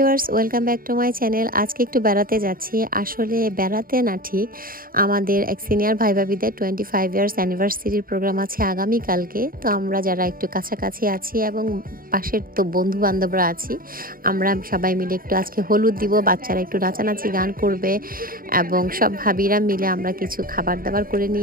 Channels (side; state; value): left; late; 0.41 ms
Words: welcome back to my channel. আজকে একটু বেড়াতে যাচ্ছি। আসলে বেড়াতে না, ঠিক আমাদের এক সিনিয়র ভাই ভাবিদের 25 ইয়ার্স অ্যানিভার্সারির প্রোগ্রাম আছে আগামীকালকে। তো আমরা যারা একটু কাছাকাছি আছি এবং পাশের তো বন্ধু বান্ধবরা আছি, আমরা সবাই মিলে একটু আজকে হলুদ দিব। বাচ্চারা একটু নাচানাচি গান করবে এবং সব ভাবিরা মিলে আমরা কিছু খাবার দাবার করে